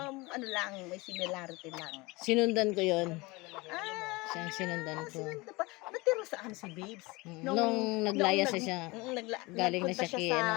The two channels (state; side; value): quieter; right; 23.8 dB